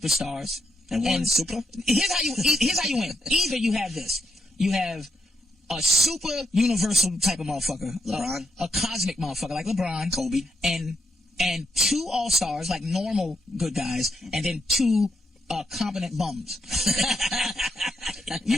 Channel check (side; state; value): both; normal; correlation 0.79